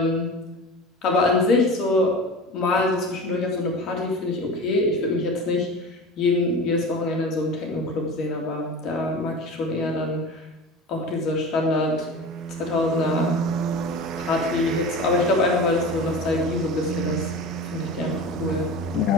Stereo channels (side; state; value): both; normal; correlation 0.33